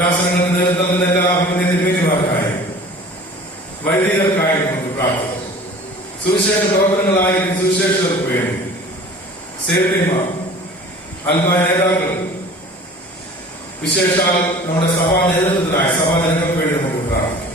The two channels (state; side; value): normal; both; correlation 0.44